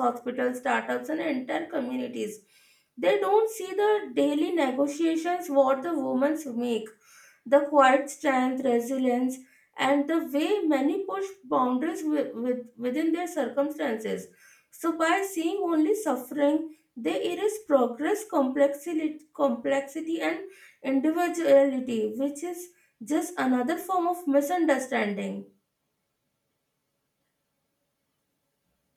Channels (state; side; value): identical; both; correlation 1.00